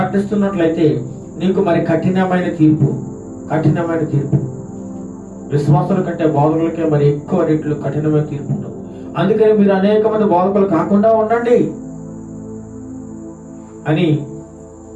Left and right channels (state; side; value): identical; both; correlation 1.00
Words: నీకు మరి కఠినమైన తీర్పు. విశ్వాసుల కంటే బోధకులకే మరి ఎక్కువ రెట్లు కఠినమైన తీర్పు ఉంటుంది. అందుకని మీరు అనేక మంది బోధకులు కాకుండా ఉండండి అని